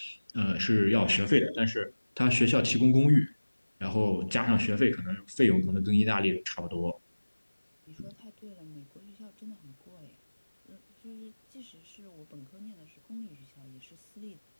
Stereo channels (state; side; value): inverted; both; correlation -1.00